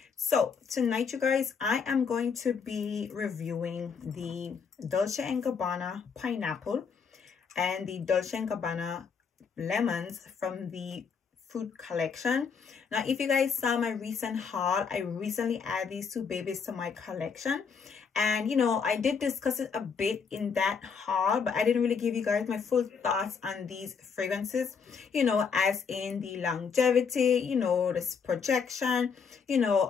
So tonight, you guys, I am going to be reviewing the Dolce & Gabbana Pineapple and the Dolce & Gabbana Lemons from the Fruit Collection. Now, if you guys saw my recent haul, I recently added these two babies to my collection. And, you know, I did discuss it a bit in that haul, but I didn't really give you guys my full thoughts on these fragrances, you know, as in the longevity, you know, this projection, and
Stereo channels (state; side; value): quieter; right; 6.0 dB